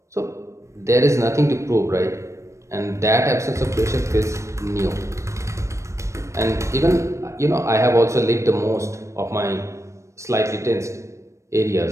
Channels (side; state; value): left; late; 0.14 ms